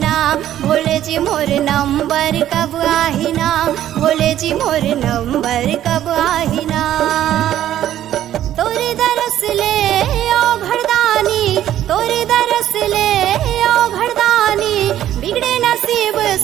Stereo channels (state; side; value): quieter; left; 12.0 dB